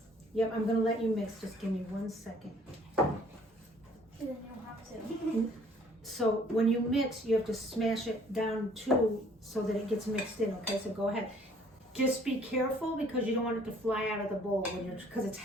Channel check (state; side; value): normal; both; correlation 0.58